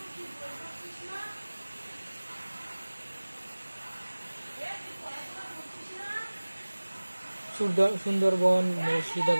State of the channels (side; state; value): both; inverted; correlation -1.00